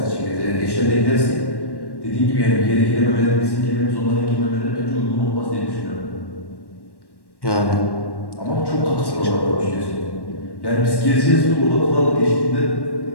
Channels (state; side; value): late; right; 1.1 ms